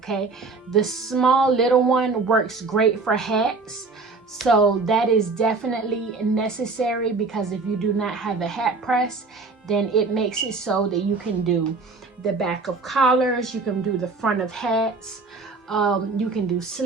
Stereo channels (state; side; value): quieter; left; 4.0 dB